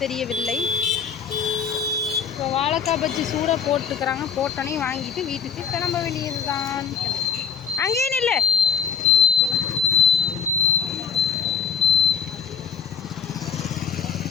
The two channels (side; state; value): right; quieter; 6.8 dB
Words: தெரியவில்லை. இப்போ வாழைக்காய் பஜ்ஜி சூடாக போட்டுக்கிறாங்க. போட்டோன்னே வாங்கிட்டு வீட்டுக்கு கிளம்ப வேண்டியது தான். அங்கேயே நில்லு.